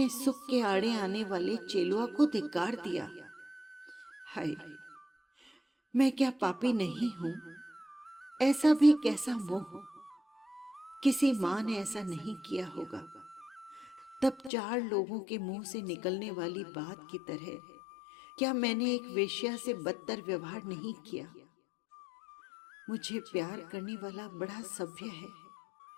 सुख के आड़े आने वाले चेलुआ को धिक्कार दिया। हाय, मैं क्या पापी नहीं हूं? ऐसा भी कैसा मोह! किसी मां ने ऐसा नहीं किया होगा। तब 4 लोगों के मुंह से निकलने वाली बात की तरह क्या मैंने एक वेश्या से बदतर व्यवहार नहीं किया? मुझे प्यार करने वाला बड़ा सभ्य है,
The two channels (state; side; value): drops out; right; at 14.5 s